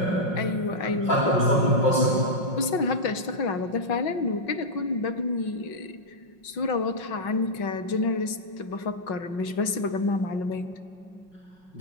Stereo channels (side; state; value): right; late; 5.5 ms